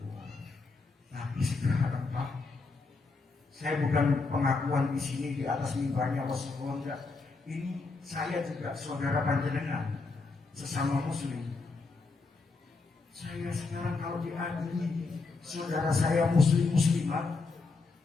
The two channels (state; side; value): quieter; right; 4.0 dB